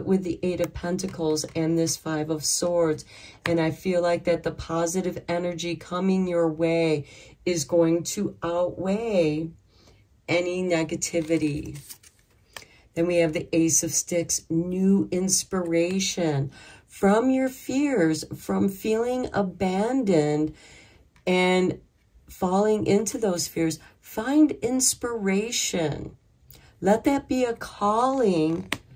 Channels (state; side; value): identical; both; correlation 1.00